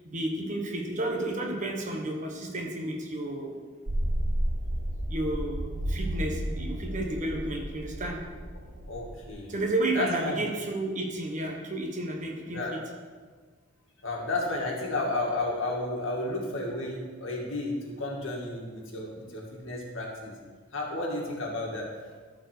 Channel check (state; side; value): normal; both; correlation 0.40